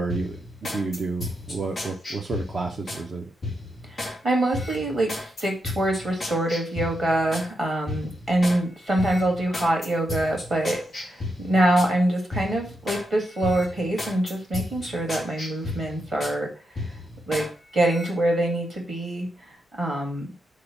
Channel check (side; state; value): both; normal; correlation 0.84